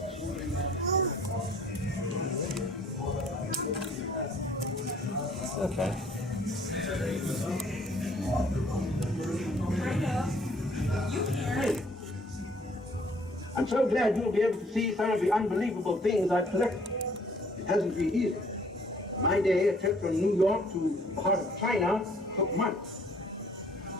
Okay. I'm so glad you'll be able to see some of the unbelievable things I've collected. It hasn't been easy. In my day, a trip from New York to the heart of China took months.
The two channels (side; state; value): both; normal; correlation 0.60